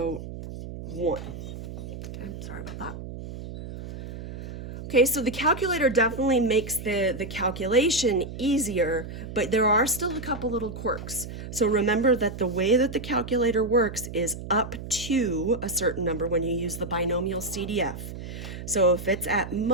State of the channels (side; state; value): right; noise; hum, 10 dB below the sound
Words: Okay, sorry about that. Okay, so the calculator definitely makes the calculation easier, but there are still a couple little quirks. So remember that the way that the calculator works is up to a certain number when you use the binomial CDF. So if it's at